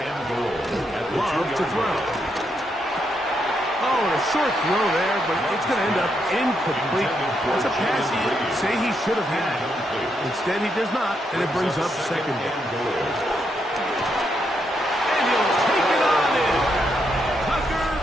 and goal. Love to throw. Oh, and a short throw there, but it's going to end up incomplete. It's a pass he'd say he should have had. Instead, he does not, and it brings up second down. And he'll take it on in. Tucker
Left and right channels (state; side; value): normal; both; correlation 0.79